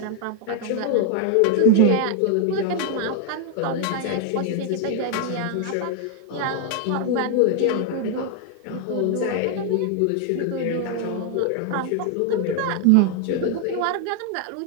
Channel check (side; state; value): both; different; correlation 0.00